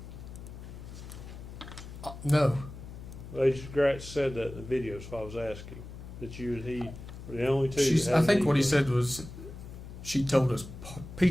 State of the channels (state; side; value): noise; left; hum, 13 dB below the sound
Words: No. Well, Agent Gratz said that in the video, so I was asking. That you and he were the only two. that I had think an what he inkling. said was she told us